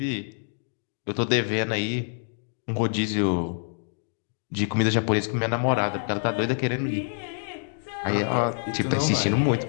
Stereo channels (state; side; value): silent; right; digital silence